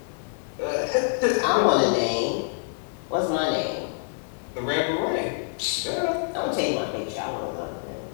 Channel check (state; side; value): silent; right; digital silence